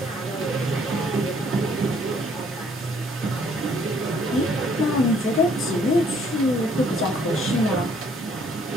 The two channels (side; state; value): both; normal; correlation 0.63